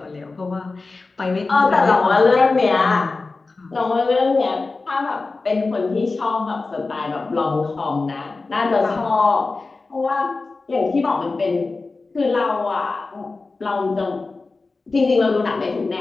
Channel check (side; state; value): right; quieter; 3.7 dB